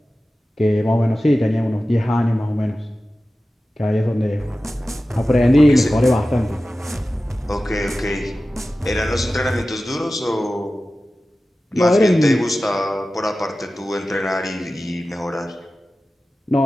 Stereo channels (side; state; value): both; normal; correlation 0.95